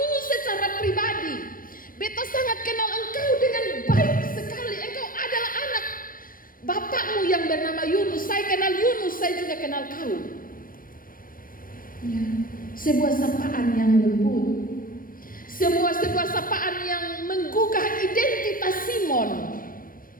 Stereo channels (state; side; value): late; right; 0.41 ms